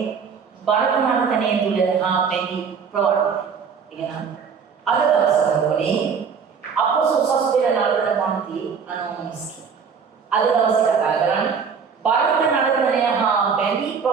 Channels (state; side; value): quieter; left; 6.2 dB